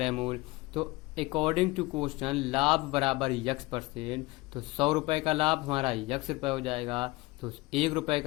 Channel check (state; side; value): quieter; right; 21.6 dB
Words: मूल्य। तो अकॉर्डिंग टू क्वेश्चन लाभ बराबर x%, तो 100 रुपए का लाभ हमारा x रुपए हो जाएगा, तो 1 रुपए